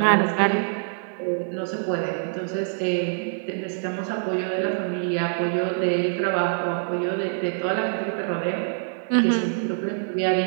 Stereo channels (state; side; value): silent; left; digital silence